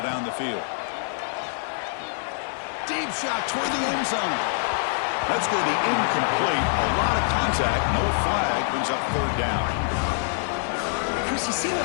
down the field. Deep shot toward the end zone. That's going to be incomplete. A lot of contact. No flag. Brings up third down. Chris, you see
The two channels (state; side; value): silent; right; digital silence